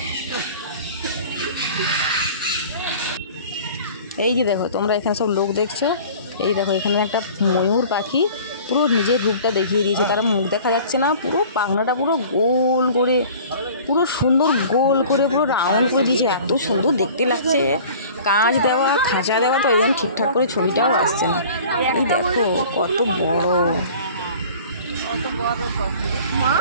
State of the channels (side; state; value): both; inverted; correlation -0.45